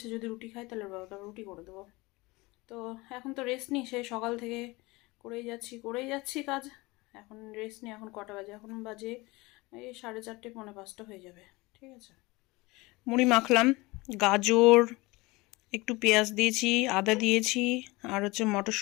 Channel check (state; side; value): quieter; right; 22.9 dB